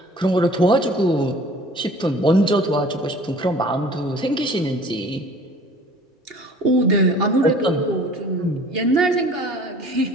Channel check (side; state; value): both; normal; correlation 0.48